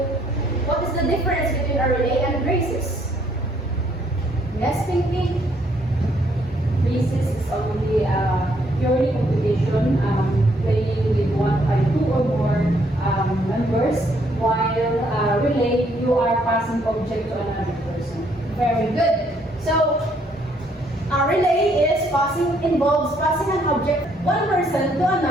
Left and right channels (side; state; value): both; normal; correlation 0.69